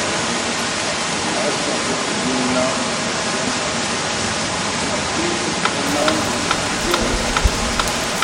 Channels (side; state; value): both; identical; correlation 1.00